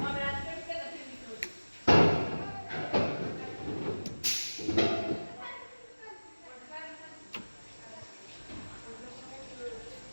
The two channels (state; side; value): inverted; both; correlation -1.00